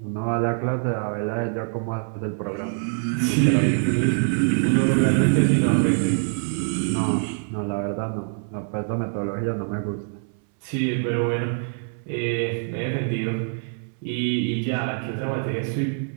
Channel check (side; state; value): left; silent; 62 dB below the other